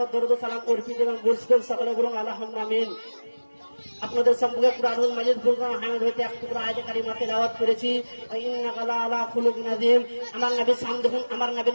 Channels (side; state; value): both; inverted; correlation -1.00